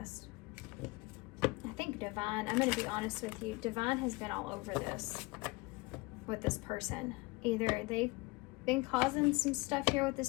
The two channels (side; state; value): right; quieter; 24.1 dB